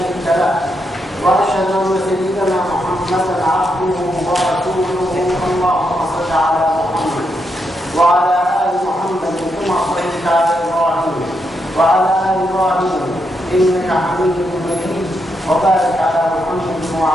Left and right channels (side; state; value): both; normal; correlation 0.81